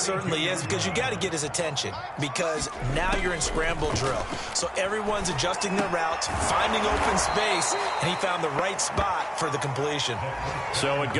is, because you got to get his attention, because now you're in scramble drill. So everyone's adjusting their routes, finding open space, and he found the right spot for the completion. So it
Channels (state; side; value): identical; both; correlation 1.00